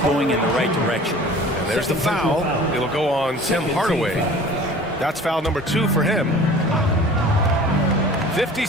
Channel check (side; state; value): both; normal; correlation 0.44